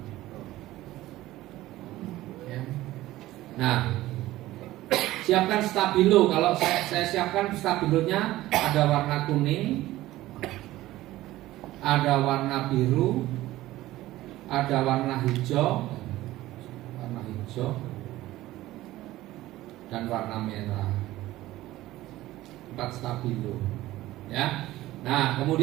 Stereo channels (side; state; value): left; quieter; 16.3 dB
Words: Ya. Nah, siapkan stabilo. Kalau saya siapkan stabilonya ada warna kuning, ada warna biru, ada warna hijau, dan warna merah. 4 stabilo, ya. Nah,